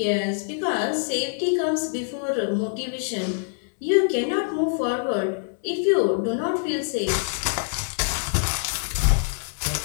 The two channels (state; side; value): silent; right; digital silence